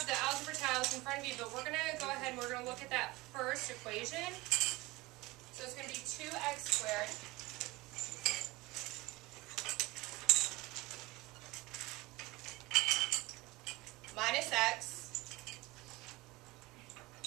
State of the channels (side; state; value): left; quieter; 21.3 dB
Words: the algebra tiles in front of you, but we're going to go ahead and we're going to look at that first equation. So it's going to be 2x squared minus x